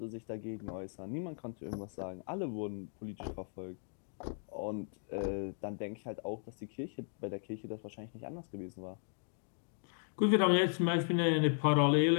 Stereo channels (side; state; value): right; silent; 53 dB below the other